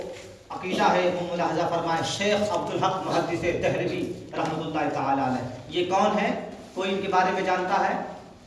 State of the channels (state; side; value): identical; both; correlation 1.00